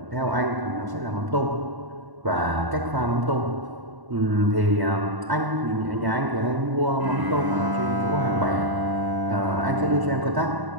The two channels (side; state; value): left; late; 1.1 ms